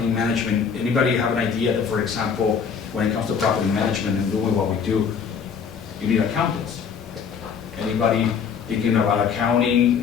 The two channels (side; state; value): right; quieter; 6.6 dB